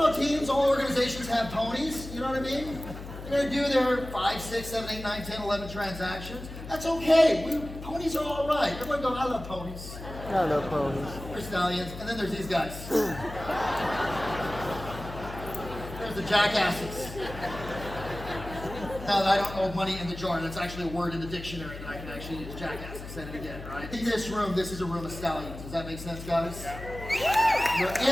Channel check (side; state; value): left; noise; hum, 11 dB below the sound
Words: teams, all organizations have ponies. You know what I mean? They're going to do their 5, 6, 7, 8, 9, 10, 11 transactions. That's okay. Ponies are all right. Everyone go, I love ponies. I love ponies. There's stallions. And then there's these guys. There's the jackasses. Now, I don't know money in the jar. That's actually a word in the dictionary that I can actually use. Jackass. I said it again, right? In this room, this is a room of stallions. Does that make sense, guys? You're